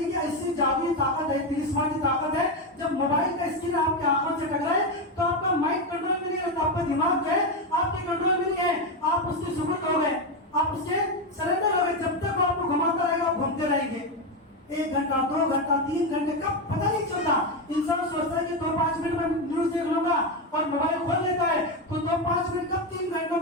ऐसी जादुई ताकत है, तिलिस्मानी ताकत है, जब मोबाइल का स्क्रीन आपकी आंखों से टकराए तो आपका माइंड कंट्रोल में नहीं रहता, आपका दिमाग जो है आपके कंट्रोल में नहीं है, आप उसके सुपुर्द हो गए, आप उसके सरेंडर हो गए। जब तक वो आपको घुमाता रहेगा आप घूमते रहेंगे। 1 घंटा 2 घंटा 3 घंटे कब पता नहीं चलता। इंसान सोचता है कि 2-5 मिनट में न्यूज देख लूंगा और मोबाइल खोल लेता है, तो 2-5 मिनट कब 3 घंटों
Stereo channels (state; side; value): normal; both; correlation 0.10